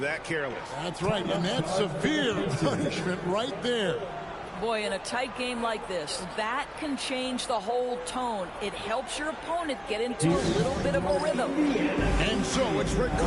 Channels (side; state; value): both; identical; correlation 1.00